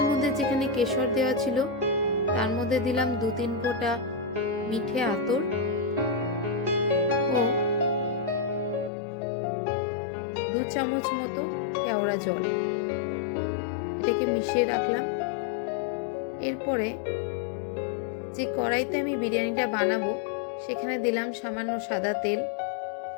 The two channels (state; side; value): drops out; right; at 8.9 s